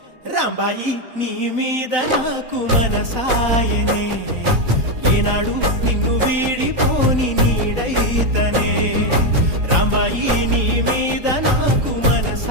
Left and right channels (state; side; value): late; left; 4.0 ms